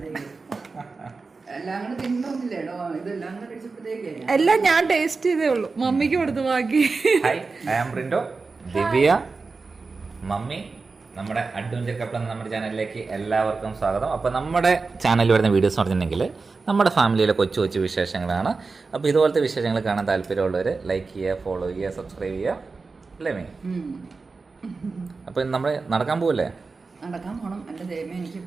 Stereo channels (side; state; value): left; quieter; 4.2 dB